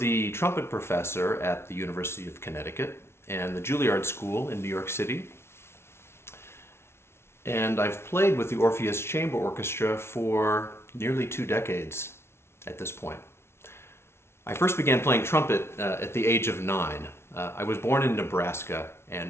trumpet professor at the University of Connecticut and the Juilliard School in New York City. And I've played with the Orpheus Chamber Orchestra for nearly 2 decades at this point. I first began playing trumpet at the age of 9. I was born in Nebraska and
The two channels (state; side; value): late; right; 0.12 ms